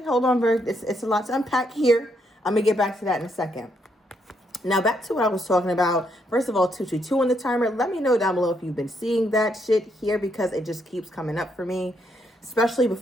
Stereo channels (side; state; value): both; normal; correlation 0.76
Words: hold on, Virg. It's a lot to unpack here. I'm gonna get back to that in a second. Now, back to what I was talking about. First of all, 222 on the timer. Let me know down below if you've been seeing that shit here, because it just keeps coming up for me. Especially